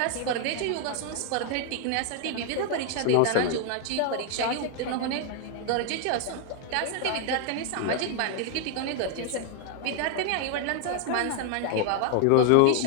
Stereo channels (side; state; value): both; different; correlation 0.00